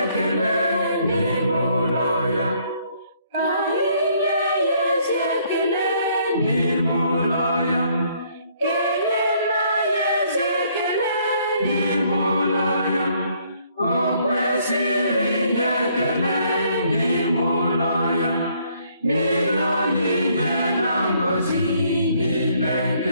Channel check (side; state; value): both; inverted; correlation -0.66